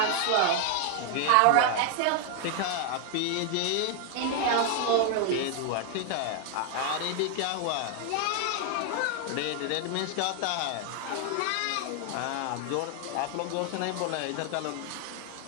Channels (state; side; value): different; both; correlation 0.00